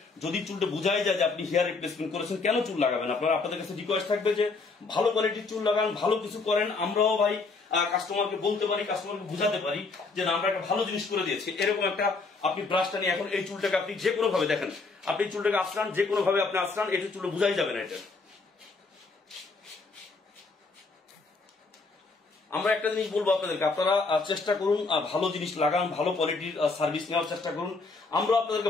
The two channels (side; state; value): right; quieter; 4.0 dB